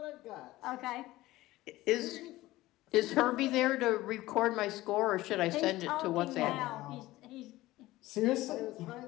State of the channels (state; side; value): quieter; right; 17.5 dB